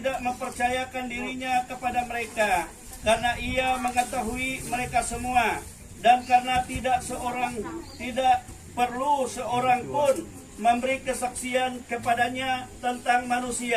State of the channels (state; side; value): identical; both; correlation 1.00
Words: mempercayakan dirinya kepada mereka, karena ia mengetahui mereka semua, dan karena tidak perlu seorang pun memberi kesaksian kepadanya tentang